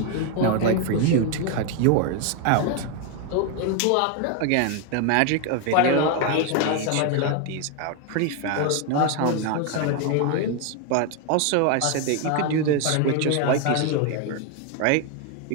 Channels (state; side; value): different; both; correlation 0.01